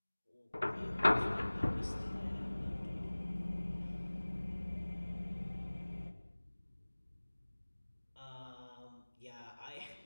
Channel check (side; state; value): both; inverted; correlation -1.00